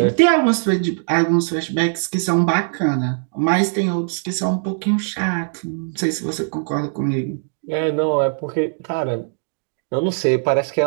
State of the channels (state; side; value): silent; left; digital silence